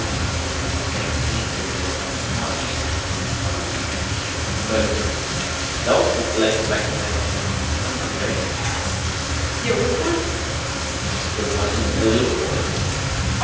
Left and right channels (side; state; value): both; identical; correlation 1.00